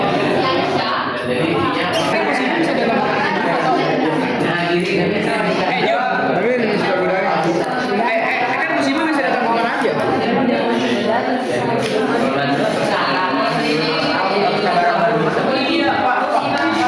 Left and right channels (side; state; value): both; identical; correlation 1.00